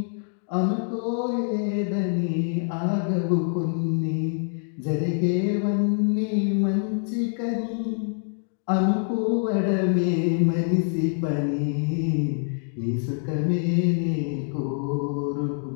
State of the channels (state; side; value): silent; right; 61 dB below the other